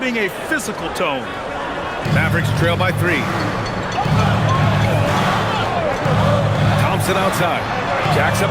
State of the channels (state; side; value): identical; both; correlation 1.00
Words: a physical tone. Mavericks trail by 3. Thompson outside. Jacks